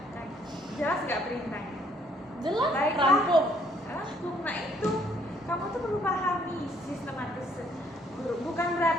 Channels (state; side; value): normal; both; correlation 0.65